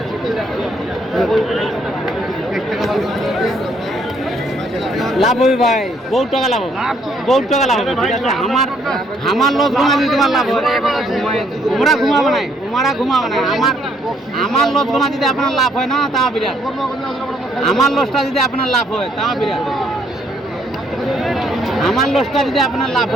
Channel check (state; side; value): normal; both; correlation 0.68